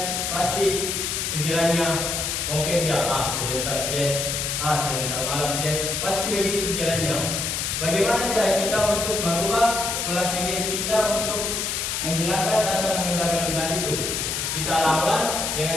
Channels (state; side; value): noise; left; hiss, 1 dB below the sound